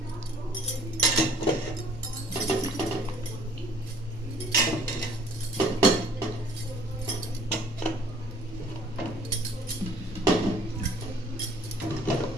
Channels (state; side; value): normal; both; correlation 0.55